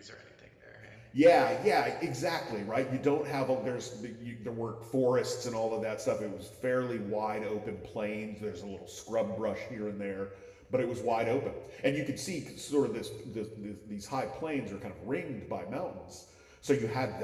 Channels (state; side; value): identical; both; correlation 1.00